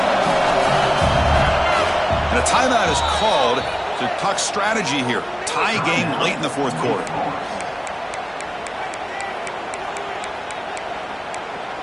And a timeout is called to talk strategy here. Tie game late in the 4th quarter.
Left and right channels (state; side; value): identical; both; correlation 1.00